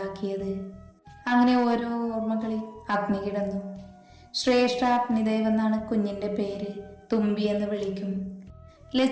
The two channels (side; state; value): both; identical; correlation 1.00